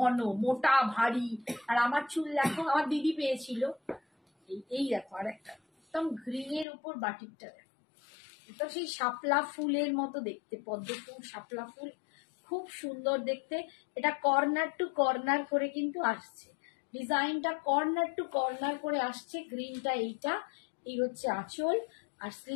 মোটা ভারী। আর আমার চুল দেখো, আমার দিদি পেয়েছিল। এই দেখো আর একটা একদম গ্রিনের উপর বাটিকটা দেখো, তো সেই শাপলা ফুলের মতো দেখতে, পদ্ম ফুল শাপলা ফুল খুব সুন্দর দেখতে। এটা কর্নার টু কর্নার করে কিন্তু আসছে, ডিজাইনটা কর্নার টু কর্নার করে আসছে। গ্রিনটা এইটা, এই হচ্ছে আঁচল, আর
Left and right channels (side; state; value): right; drops out; at 6.7 s